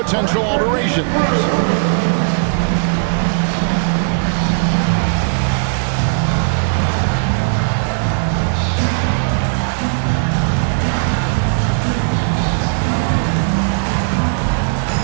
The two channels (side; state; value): left; silent; digital silence